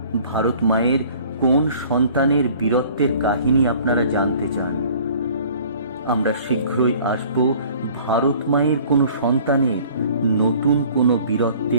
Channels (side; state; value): both; inverted; correlation -0.51